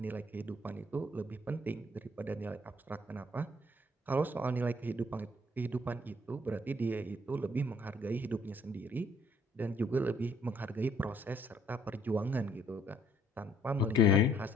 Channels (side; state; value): both; normal; correlation 0.64